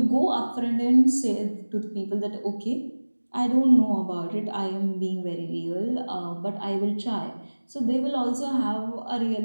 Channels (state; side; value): inverted; both; correlation -1.00